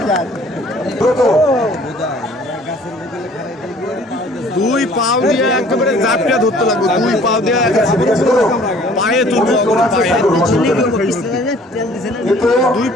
দ্রুত দুই পাও দিয়ে একেবারে জাপটা ধরতে লাগবে, দুই পাও দিয়ে পায়ে তুলবো, পায়ে দুই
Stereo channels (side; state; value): both; normal; correlation 0.54